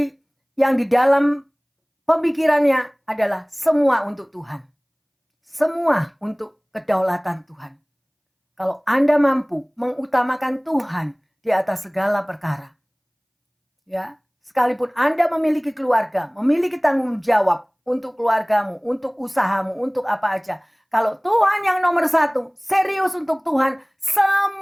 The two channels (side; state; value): both; identical; correlation 1.00